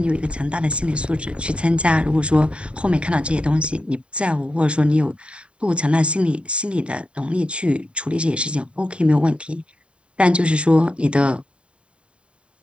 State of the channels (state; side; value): late; left; 0.058 ms